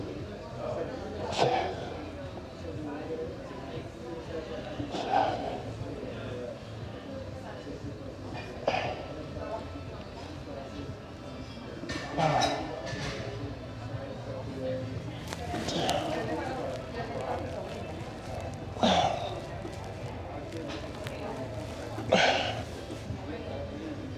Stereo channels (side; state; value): both; identical; correlation 1.00